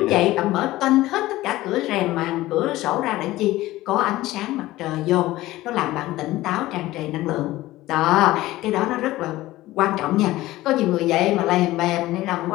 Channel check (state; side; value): quieter; right; 17.0 dB